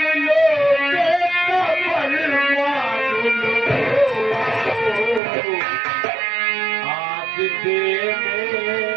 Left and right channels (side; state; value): left; drops out; at 5.2 s